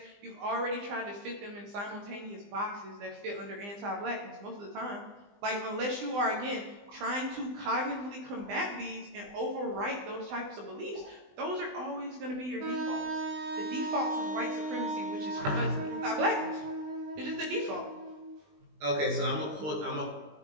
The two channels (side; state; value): left; late; 20 ms